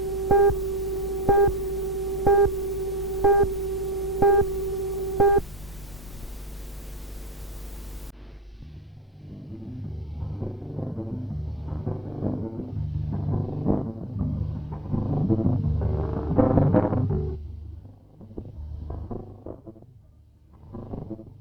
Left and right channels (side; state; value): both; normal; correlation 0.36